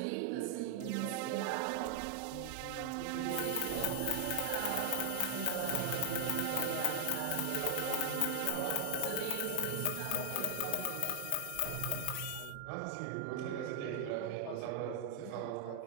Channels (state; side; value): different; both; correlation 0.00